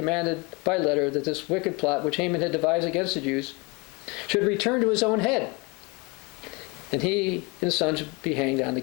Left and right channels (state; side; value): quieter; right; 28.2 dB